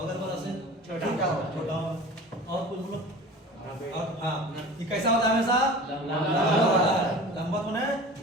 वाला से छोटा होगा। और कुछ बोलो। और हाँ, ये कैसा होता है? हमेशा लंबवत होता है, लंबवत होने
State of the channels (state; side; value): normal; both; correlation 0.38